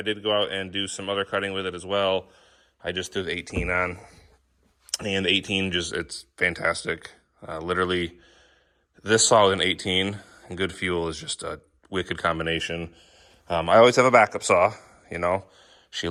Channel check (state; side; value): identical; both; correlation 1.00